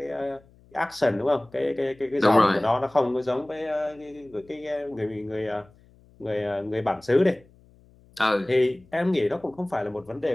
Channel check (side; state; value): left; noise; hum, 28 dB below the sound